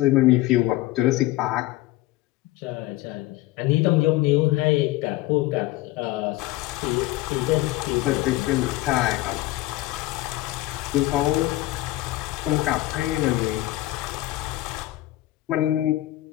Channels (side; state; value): right; quieter; 17.2 dB